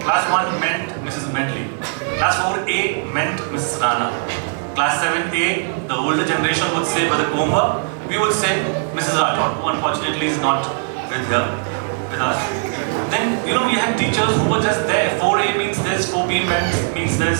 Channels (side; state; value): left; silent; 66 dB below the other